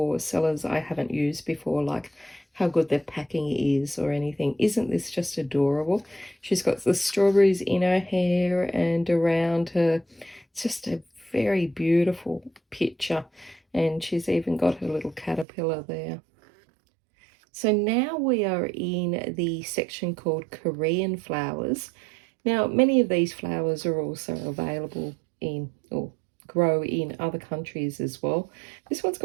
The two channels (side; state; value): left; drops out; at 15.5 s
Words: sellers I haven't used before, like how good their packing is or anything. Isn't this just adorable? She's got the strawberries in her hair and around her. It's just a very beautiful picture, and she's even got her little caterpillar there. So now we are in the section called Korean flowers. Now, many of these flowers are also available in or grow in other countries as well. This one's